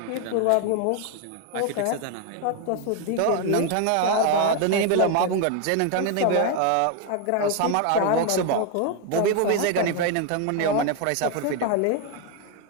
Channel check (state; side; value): different; both; correlation 0.01